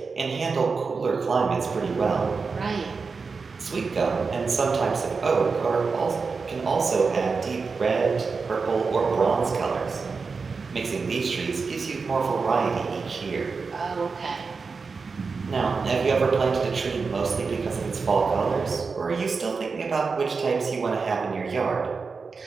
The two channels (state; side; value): quieter; left; 4.8 dB